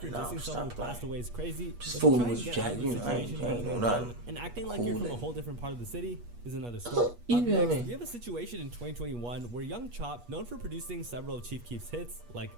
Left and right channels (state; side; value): late; left; 8.3 ms